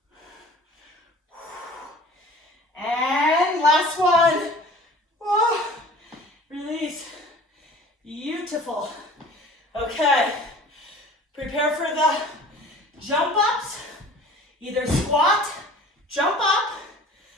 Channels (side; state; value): both; normal; correlation 0.45